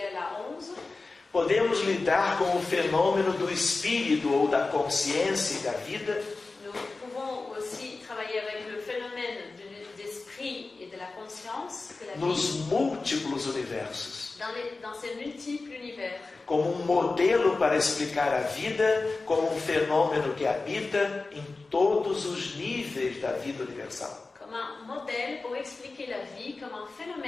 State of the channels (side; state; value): right; quieter; 3.7 dB